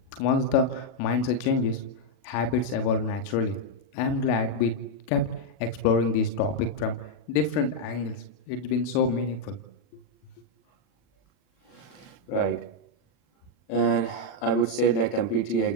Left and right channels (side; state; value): right; late; 40 ms